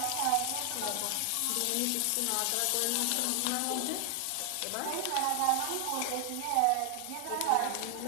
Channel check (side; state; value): both; different; correlation 0.00